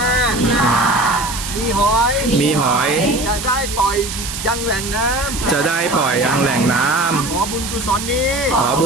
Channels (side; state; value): right; noise; hiss, 7 dB below the sound